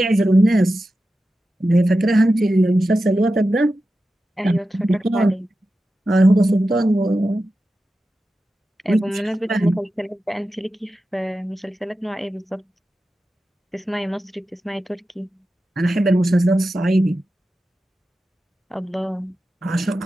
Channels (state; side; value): normal; both; correlation 0.92